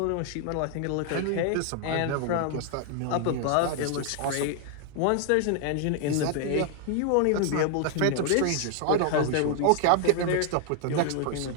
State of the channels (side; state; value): both; different; correlation 0.00